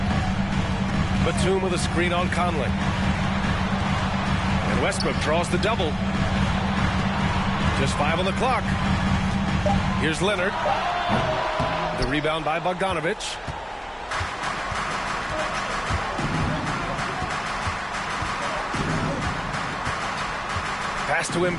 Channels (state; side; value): identical; both; correlation 1.00